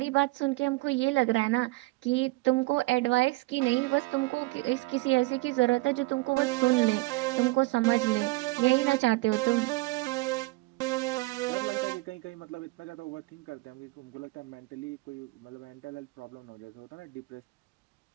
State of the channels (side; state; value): left; quieter; 22.8 dB